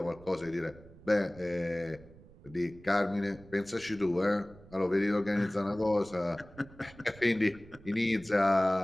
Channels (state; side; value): noise; right; rumble, 21 dB below the sound